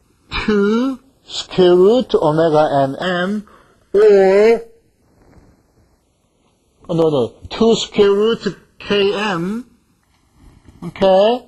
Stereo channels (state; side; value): identical; both; correlation 1.00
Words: 2 square root omega n m, or 2 square root km. Okay?